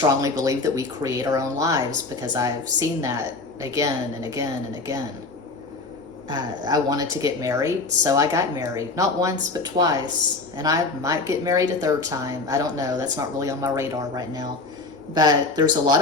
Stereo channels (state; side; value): quieter; right; 3.7 dB